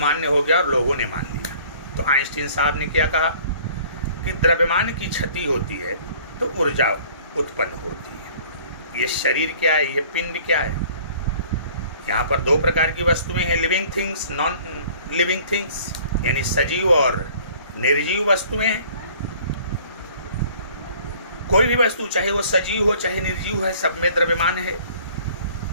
हो गया और लोगों ने मान लिया। तो आइंस्टीन साहब ने क्या कहा कि द्रव्यमान की क्षति होती है तो ऊर्जा उत्पन्न होती है। ये शरीर क्या है, ये पिंड क्या है? यहाँ पर दो प्रकार की वस्तुएं हैं, living things, non living things. यानी सजीव और निर्जीव वस्तुएं। कोई भी वस्तु चाहे वो सजीव हो चाहे निर्जीव है, सब में द्रव्यमान है।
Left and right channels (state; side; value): inverted; both; correlation -0.53